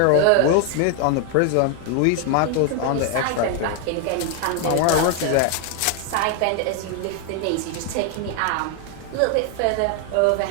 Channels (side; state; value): both; different; correlation 0.00